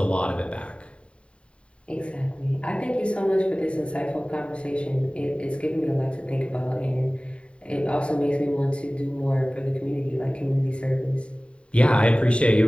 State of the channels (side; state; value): right; late; 0.058 ms